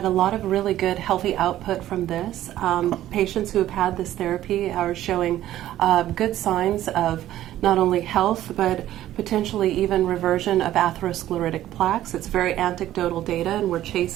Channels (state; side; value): quieter; left; 13.3 dB